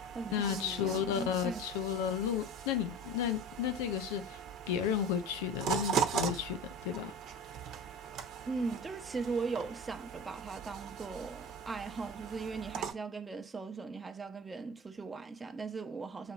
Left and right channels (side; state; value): both; normal; correlation 0.32